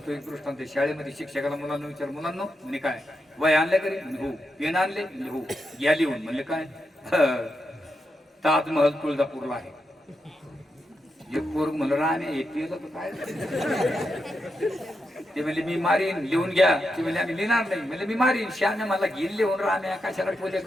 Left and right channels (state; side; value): normal; both; correlation 0.85